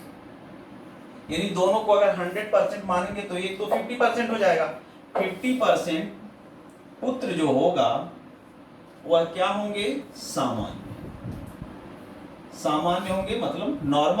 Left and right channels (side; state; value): both; identical; correlation 1.00